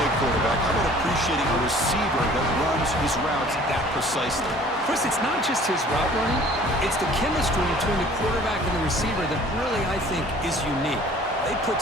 quarterback. How about appreciating a receiver that runs his routes that precisely? Chris, it's not just his route running. It's the chemistry between the quarterback and the receiver that really, I think, is unique. They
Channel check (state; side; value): normal; both; correlation 0.51